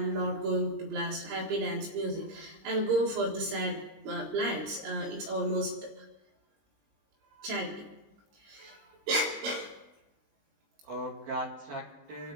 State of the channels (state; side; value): late; left; 20 ms